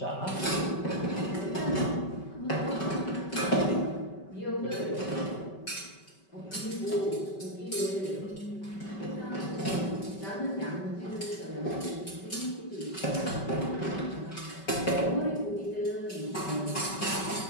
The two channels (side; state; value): right; late; 5.2 ms